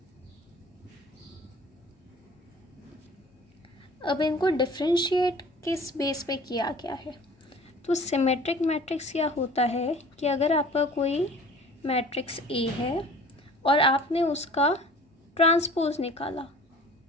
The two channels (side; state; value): both; normal; correlation 0.46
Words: अब इनको डिफरेंशिएट किस बेस पे किया गया है? तो सिमेट्रिक मैट्रिक्स क्या होता है कि अगर आपका कोई मैट्रिक्स ए है और आपने उसका ट्रांसपोज निकाला,